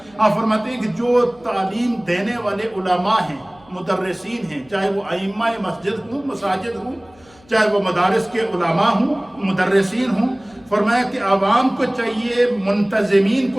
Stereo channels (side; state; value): left; noise; hum, 28 dB below the sound